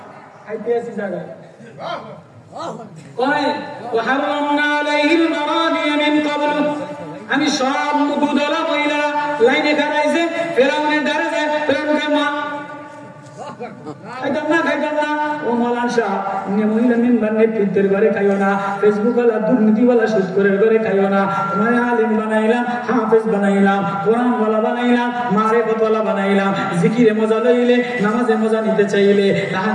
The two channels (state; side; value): identical; both; correlation 1.00